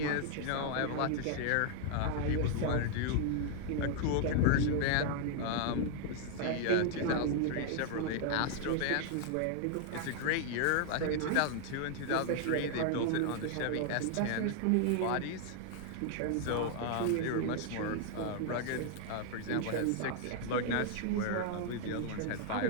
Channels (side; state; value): both; different; correlation 0.00